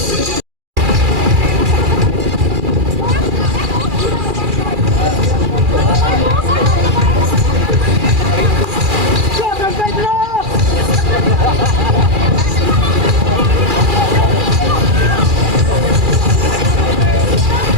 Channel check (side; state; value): left; late; 2.4 ms